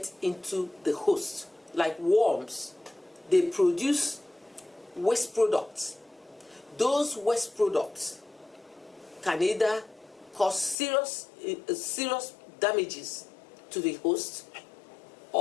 into the host, like worms, they produce waste products. Those waste products can either cause serious damages to the host,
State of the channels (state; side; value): drops out; right; at 10.8 s